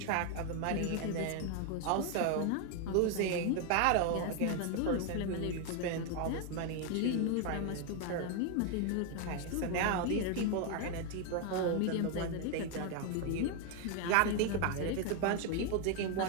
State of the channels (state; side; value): different; both; correlation 0.01